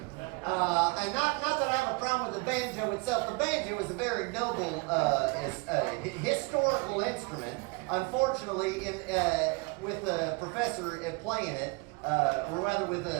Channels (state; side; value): quieter; left; 28.5 dB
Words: not that I have a problem with the banjo itself. The banjo is a very noble, historical instrument. Unfortunately, with a professor playing it, or rather with